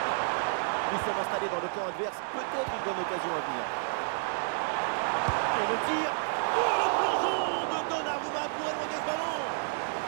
Nous sommes installés dans le camp adverse. Peut-être une bonne occasion à venir. Et le tir. Oh, le plongeon de Donnarumma pour éloigner ce ballon.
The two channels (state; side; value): silent; left; 58 dB below the other